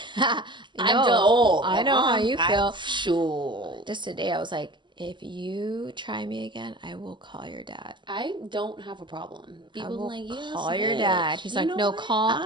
too old. I know how you feel. Sure. Just today, I was like, if you try me again, I will call your dad. I don't have a problem. People will like, yes, call your dad. He's like, no, call. I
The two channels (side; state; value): left; late; 0.22 ms